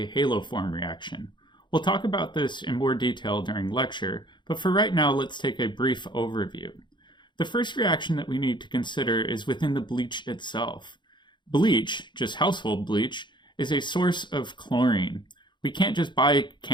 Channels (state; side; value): late; right; 0.22 ms